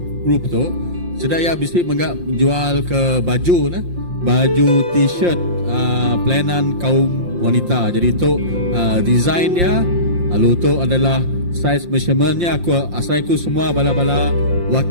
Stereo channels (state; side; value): late; left; 5.7 ms